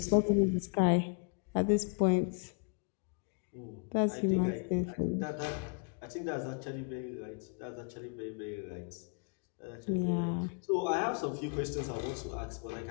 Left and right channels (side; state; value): right; quieter; 39.2 dB